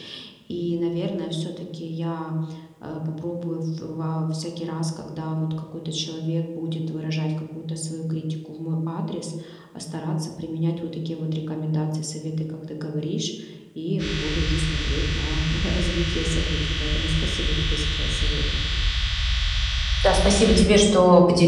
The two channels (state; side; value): identical; both; correlation 1.00